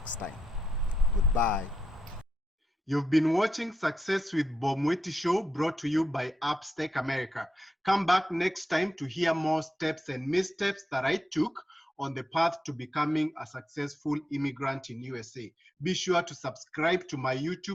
time. Goodbye. You've been watching Success with Bob Mwiti Show, brought to you by Upstack America. Come back next time to hear more steps and missteps that I took on the path to becoming a successful immigrant in USA. Be sure to subscribe to my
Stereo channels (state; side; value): normal; both; correlation 0.86